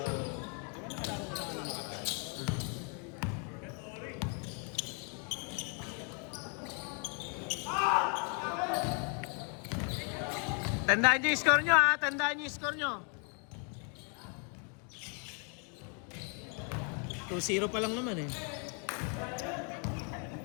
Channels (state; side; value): quieter; right; 38.6 dB